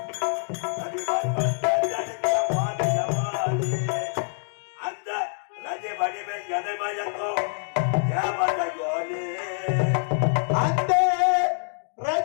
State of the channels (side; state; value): right; silent; 61 dB below the other